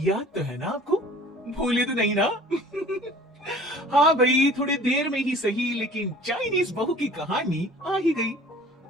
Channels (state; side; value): normal; both; correlation 0.47